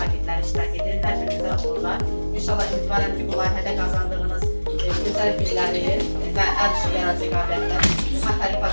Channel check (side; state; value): both; inverted; correlation -1.00